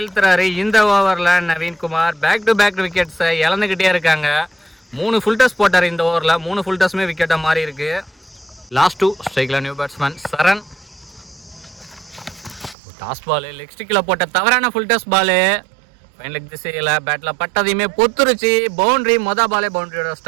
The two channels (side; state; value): left; drops out; at 12.8 s